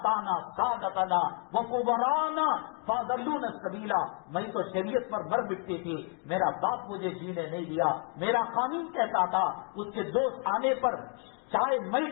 سادتنا وکبراءنا فاضلونا السبیل. میں تو شریعت پر مر مٹتی تھی، میرا باپ مجھے جینے نہیں دیا، میرا خامن کہتا تھا اس کے دوست آنے پر چائے میں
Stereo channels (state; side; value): quieter; right; 38.1 dB